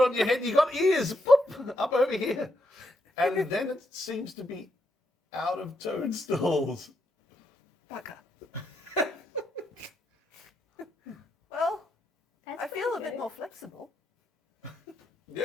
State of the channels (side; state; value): both; normal; correlation 0.80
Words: your head. You got ears. Boop, up over here, and then it seems to be out of toadstools. Bugger. Well, That's I feel a bit more flexible.